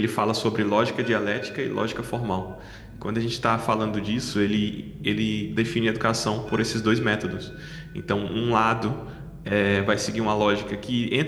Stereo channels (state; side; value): identical; both; correlation 1.00